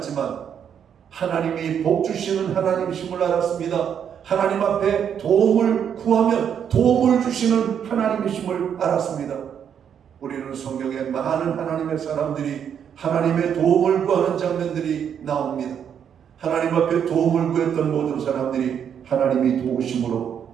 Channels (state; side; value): quieter; left; 8.3 dB